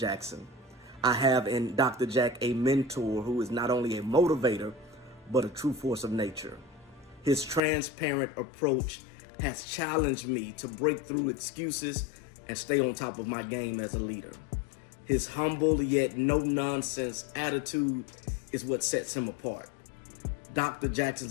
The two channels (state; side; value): drops out; right; at 7.6 s